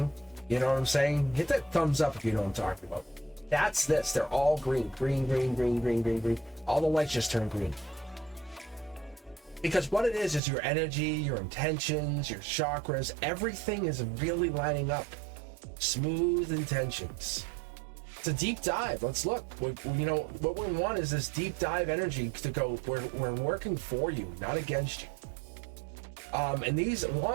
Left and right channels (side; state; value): left; drops out; at 10.4 s